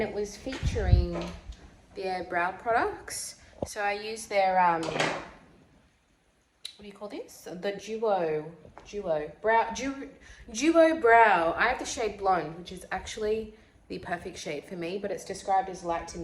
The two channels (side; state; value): both; identical; correlation 1.00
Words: it was featuring their brow products. So I use their, what do you call this? The Duo Brow. I have the shade Blonde, which is actually the perfect shade for me, but it's described as light to